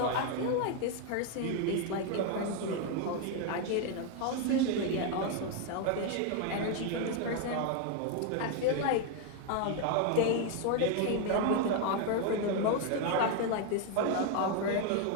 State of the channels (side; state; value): both; different; correlation 0.01